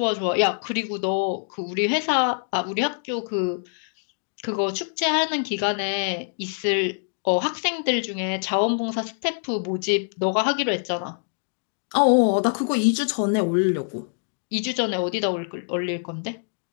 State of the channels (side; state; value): right; silent; digital silence